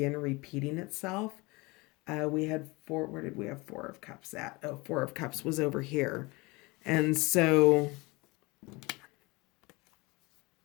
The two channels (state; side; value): quieter; right; 24.6 dB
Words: repeating itself. We had four, where did we have Four of Cups at? Oh, Four of Cups was over here. And so